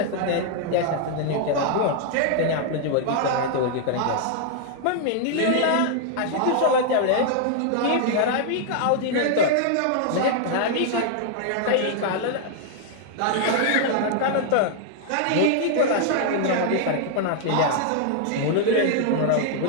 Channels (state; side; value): different; both; correlation 0.00